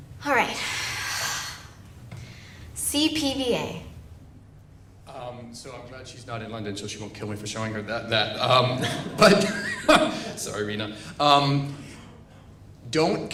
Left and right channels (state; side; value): identical; both; correlation 1.00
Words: All right. CPVA. So I'm glad she's not in London, so she won't kill me for showing her that. But sorry, Rena. Don't